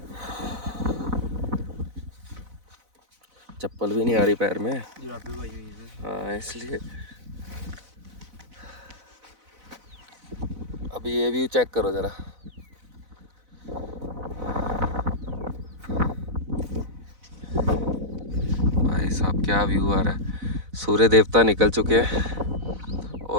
चप्पल भी नहीं आ रही पैर में। जुराबे भाई हुई है। हाँ, इसलिए। अभी ये व्यू चेक करो ज़रा। भाई साहब, क्या व्यू आ रहा है। सूर्य देवता निकल चुके हैं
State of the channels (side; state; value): left; late; 4.0 ms